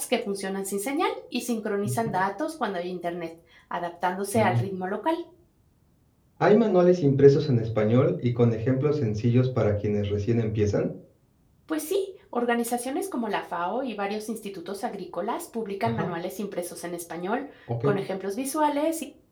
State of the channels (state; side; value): identical; both; correlation 1.00